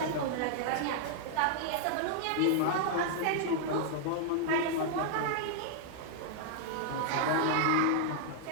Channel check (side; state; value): both; different; correlation -0.01